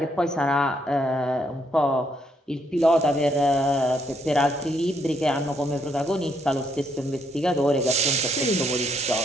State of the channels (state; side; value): normal; both; correlation 0.73